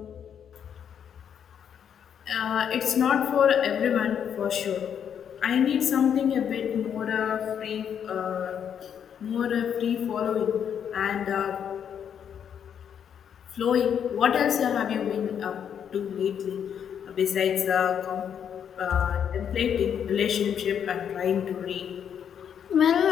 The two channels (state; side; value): quieter; right; 8.4 dB